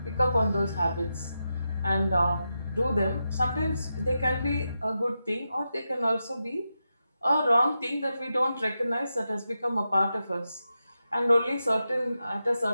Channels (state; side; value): inverted; both; correlation -0.88